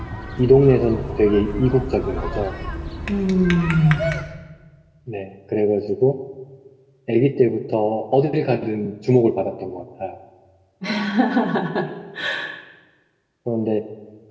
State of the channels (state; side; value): identical; both; correlation 1.00